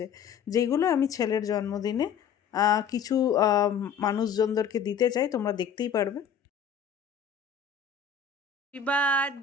যেগুলো আমি ছেলের জন্মদিনে কিছু মানুষজনদেরকে দিতে চাই, তোমরা দেখতেই পারবে। Happy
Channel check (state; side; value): quieter; right; 7.2 dB